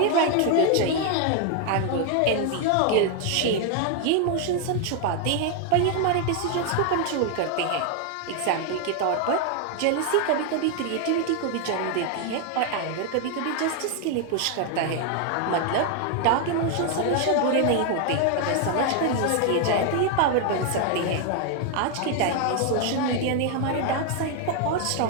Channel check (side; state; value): both; different; correlation 0.00